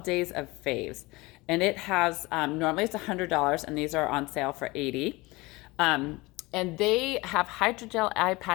Days of Faves, and it has, normally it's $100, and these are on sale for 80. And they have hydrogel eye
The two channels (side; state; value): right; quieter; 22.5 dB